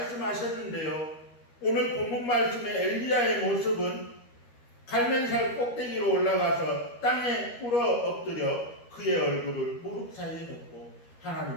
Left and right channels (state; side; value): late; right; 13 ms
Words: 오늘 본문 말씀의 엘리야의 모습은 갈면살 꼭대기로 올라가서 땅에 꿇어 엎드려 그의 얼굴을 무릎 사이에 놓고